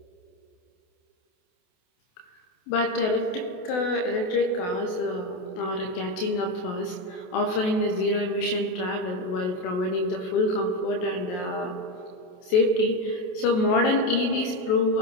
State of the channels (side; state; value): right; late; 28 ms